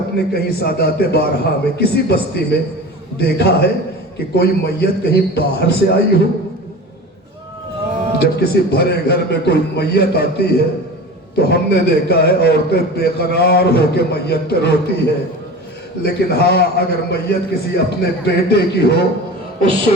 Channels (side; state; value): both; normal; correlation 0.34